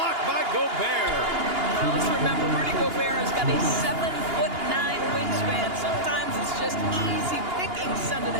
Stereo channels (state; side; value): late; left; 2.8 ms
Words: by Gobert. Let's remember, Rudy Gobert has got a 7'9" wingspan. Sometimes it's just easy picking sending